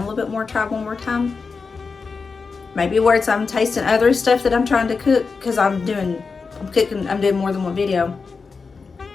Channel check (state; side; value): quieter; right; 4.8 dB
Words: a little bit more, try one more time. Maybe where I'm tasting other stuff that I'm trying to cook, because I'm doing more than one video.